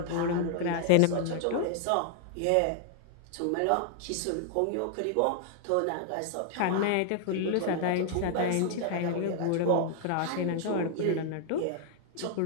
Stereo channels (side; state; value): both; different; correlation 0.00